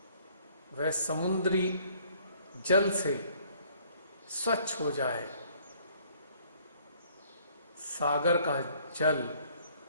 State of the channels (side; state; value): both; inverted; correlation -0.60